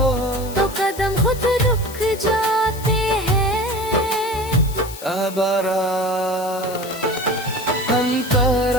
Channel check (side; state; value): left; noise; hiss, 14 dB below the sound